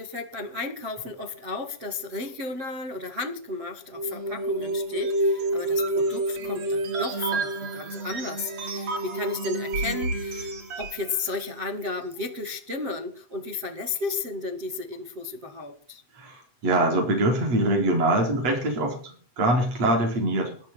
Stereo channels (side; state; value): left; late; 8.0 ms